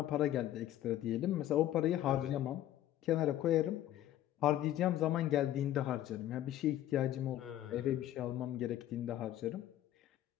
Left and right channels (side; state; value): right; quieter; 12.8 dB